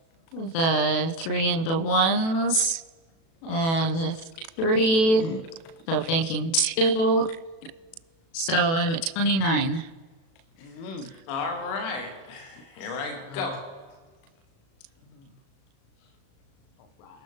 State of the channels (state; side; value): late; right; 36 ms